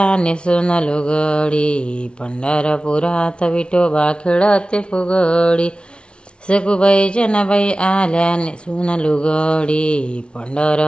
नेसून लुगडी, पंढरपुरात विठोबा खेळते फुगडी, सखूबाई जनाबाई आल्या नेसून लुगडी,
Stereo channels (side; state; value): right; late; 0.057 ms